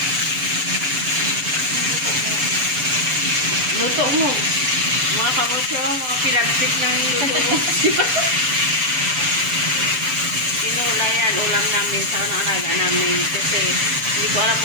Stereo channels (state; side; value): late; left; 6.9 ms